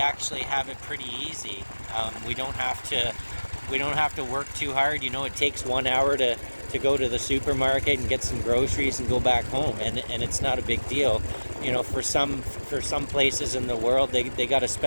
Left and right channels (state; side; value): inverted; both; correlation -1.00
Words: have it pretty easy. We don't have to work too hard. You know, it takes 1 hour to go to the supermarket and get some groceries and go back home, and it's not a big deal. You know, for some places in the world, they got to